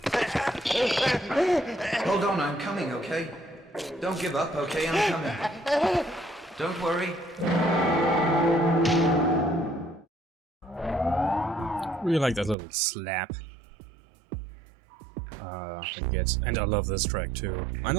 Hold on, I'm coming, okay? Don't give up, okay? I'm coming. Don't worry. Really like that little slap. I guess. And I love this track too. I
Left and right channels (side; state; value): left; drops out; at 12.6 s